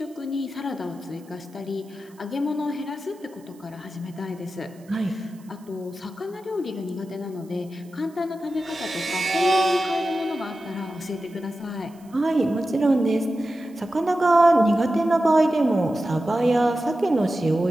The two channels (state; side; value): noise; right; hiss, 29 dB below the sound